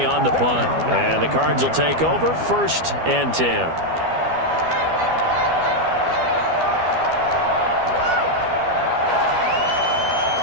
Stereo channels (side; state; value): left; late; 12 ms